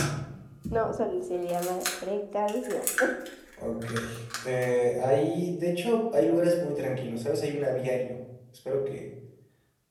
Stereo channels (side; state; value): both; identical; correlation 1.00